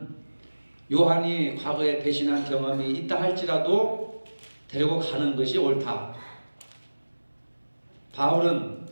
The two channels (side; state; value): both; inverted; correlation -1.00